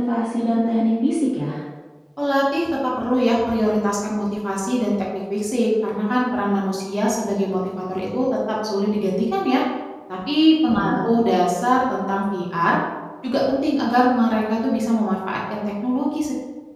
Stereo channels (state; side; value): identical; both; correlation 1.00